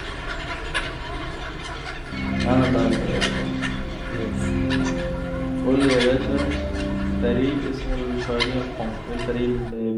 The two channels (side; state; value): both; identical; correlation 1.00